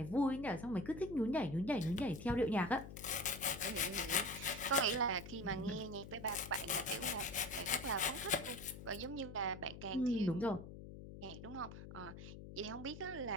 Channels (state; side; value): noise; left; hum, 12 dB below the sound